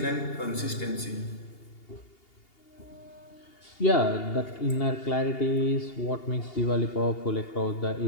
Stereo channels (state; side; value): late; right; 2.8 ms